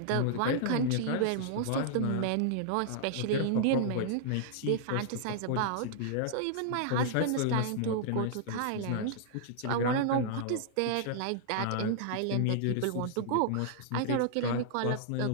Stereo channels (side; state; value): both; different; correlation -0.01